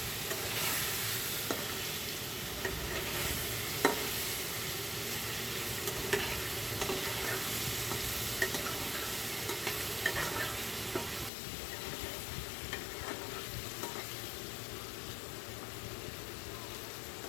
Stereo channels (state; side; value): drops out; right; at 11.3 s